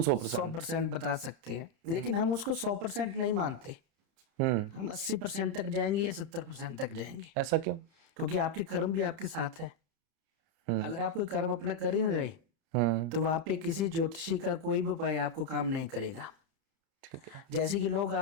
100%। 100% बता सकते हैं, लेकिन हम उसको 100% नहीं मानते। हम 80% तक जाएंगे या 70% तक जाएंगे। ऐसा क्यों? क्योंकि आपके कर्म भी आपके साथ है। अगर आप कोई कर्म अपना कर ही नहीं रहे तो वहां पे किसी ज्योतिषी का कोई भी उपाय आपको काम नहीं करेगा। ठीक है। जैसे कि लोग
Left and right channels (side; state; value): left; late; 30 ms